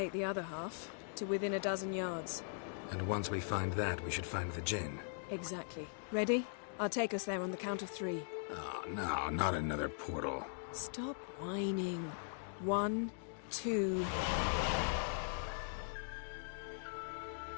the other half, to within a dozen yards. And once we find that, we should find the gin. Exactly. Ready? I'll take us there on the count of 3. Oh, no, not another portal. Stop whining. 1, 2...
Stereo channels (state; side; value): silent; right; digital silence